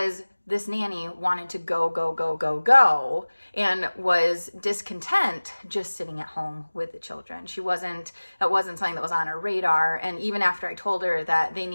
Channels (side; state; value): both; inverted; correlation -1.00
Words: this nanny wanted to go, and was discontent just sitting at home with the children. That wasn't something that was on her radar. And even after I told her that they